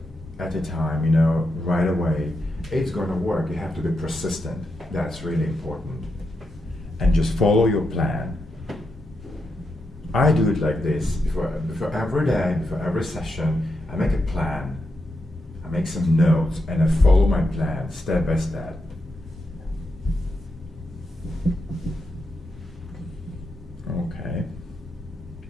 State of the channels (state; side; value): normal; both; correlation 0.85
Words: at a time, you know, right away. It's going to work. You have to be persistent. That's really important. And just follow your plan. I do it like this. Before every day, before every session, I make a plan. I make some notes and I follow my plan step by step. Okay.